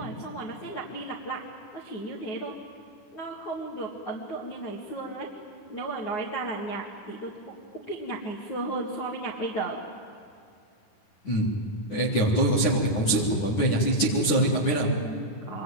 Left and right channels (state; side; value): late; right; 9.7 ms